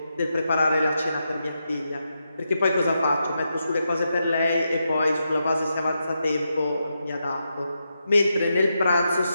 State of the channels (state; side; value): inverted; both; correlation -0.85